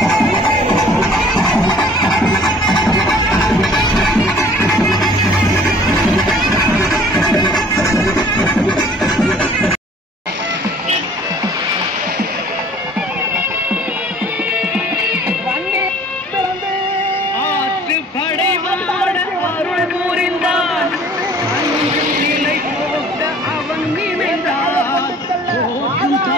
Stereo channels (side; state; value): both; normal; correlation 0.53